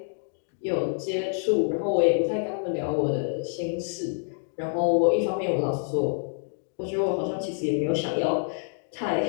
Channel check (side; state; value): right; silent; 60 dB below the other